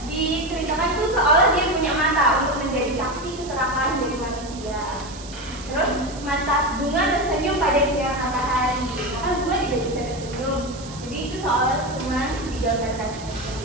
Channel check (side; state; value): right; noise; hiss, 16 dB below the sound